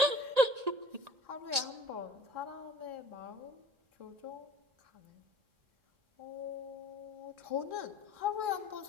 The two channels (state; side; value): late; left; 1.8 ms